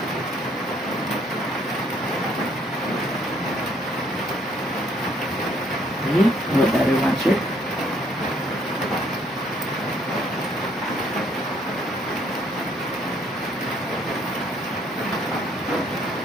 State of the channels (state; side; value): normal; both; correlation 0.65